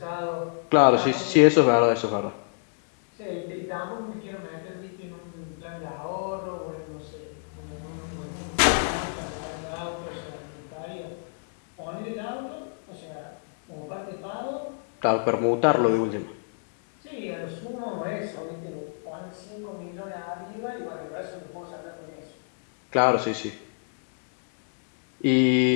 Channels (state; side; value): silent; right; digital silence